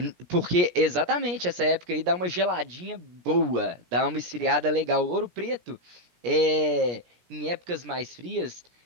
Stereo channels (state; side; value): late; left; 17 ms